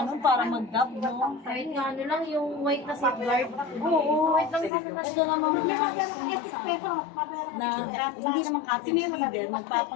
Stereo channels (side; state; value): right; drops out; at 4.7 s